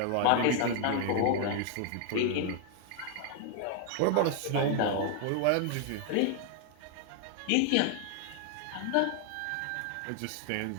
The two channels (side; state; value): both; different; correlation 0.00